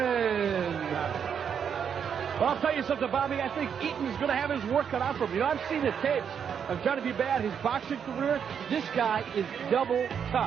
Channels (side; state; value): left; quieter; 7.6 dB